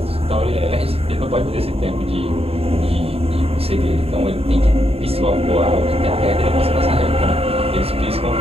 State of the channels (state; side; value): late; left; 0.28 ms